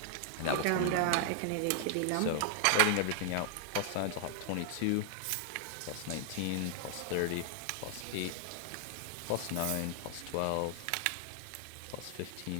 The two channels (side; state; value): both; different; correlation -0.01